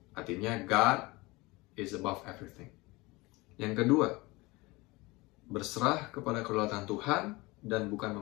Artinya, God is above everything. Yang kedua, berserah kepada kedaulatan Tuhan dan bukan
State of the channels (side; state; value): right; quieter; 23.0 dB